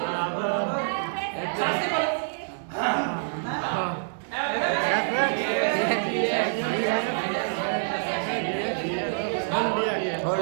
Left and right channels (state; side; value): silent; left; digital silence